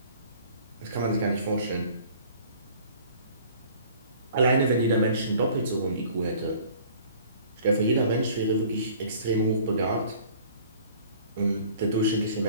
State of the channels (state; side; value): inverted; both; correlation -0.51